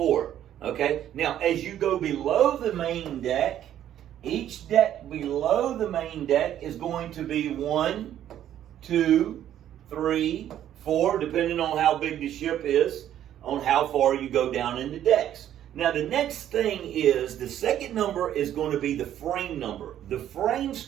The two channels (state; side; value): quieter; left; 11.2 dB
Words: Okay, now as you go below the main deck, each deck below the main deck is going to be 1, 2, 3, 4, depending on how big the ship is, on how far you go down in the decks. Now the next thing is, the second number is going to be the frame number. The frame